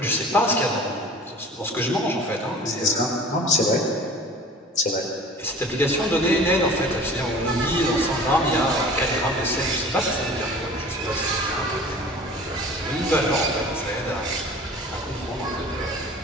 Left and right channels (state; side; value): normal; both; correlation 0.43